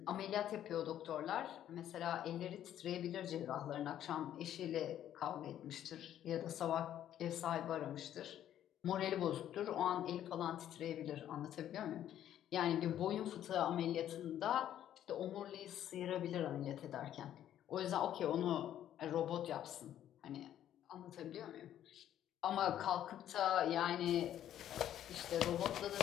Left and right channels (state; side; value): quieter; right; 11.2 dB